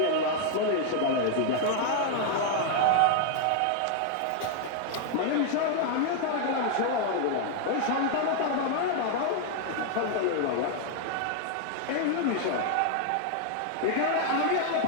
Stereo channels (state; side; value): different; both; correlation 0.00